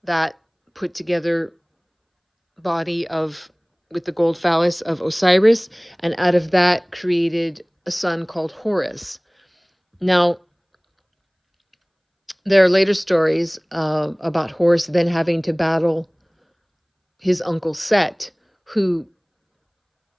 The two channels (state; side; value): identical; both; correlation 1.00